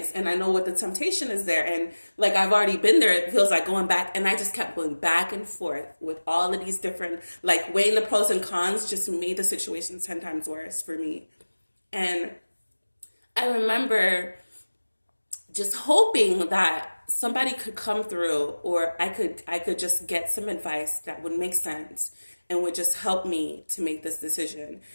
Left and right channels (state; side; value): inverted; both; correlation -1.00